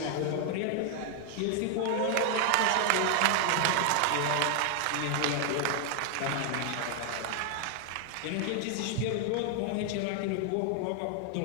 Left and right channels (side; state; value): both; different; correlation 0.00